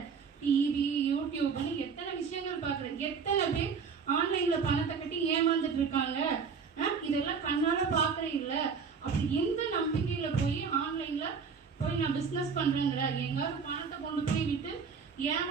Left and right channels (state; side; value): quieter; left; 5.8 dB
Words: டிவி, யூடியூப்னு எத்தனை விஷயங்கள் பாக்குற. எத்தனை பேர் ஆன்லைன்ல பணத்தை கட்டி ஏமாந்துட்டு இருக்காங்க. இதெல்லாம் கண்ணால பாக்குற இல்ல. அப்படி எந்த நம்பிக்கையில போய் ஆன்லைன்ல போய் நான் பிசினஸ் பண்றேங்கிற? எங்காவது பணத்தை கொண்டு போய் விட்டு